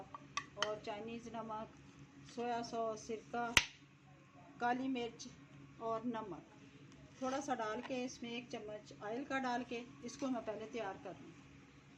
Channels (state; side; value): identical; both; correlation 1.00